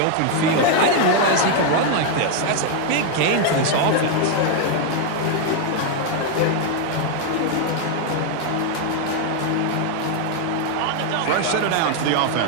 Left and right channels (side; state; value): both; different; correlation 0.00